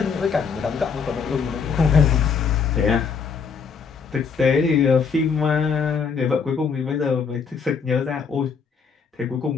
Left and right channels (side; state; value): right; quieter; 5.8 dB